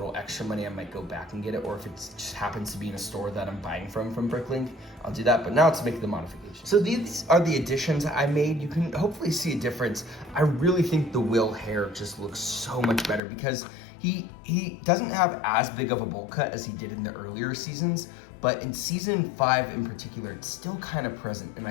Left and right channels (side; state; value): right; drops out; at 13.2 s